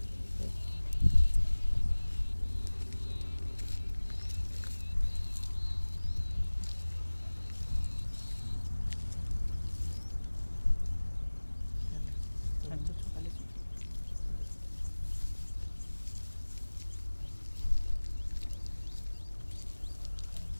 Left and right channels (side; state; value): both; inverted; correlation -1.00